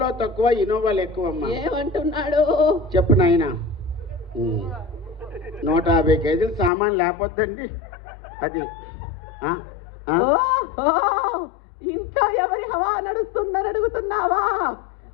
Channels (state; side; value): drops out; right; at 6.7 s